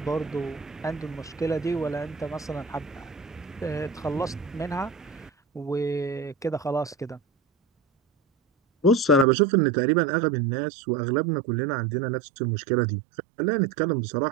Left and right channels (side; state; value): left; drops out; at 9.2 s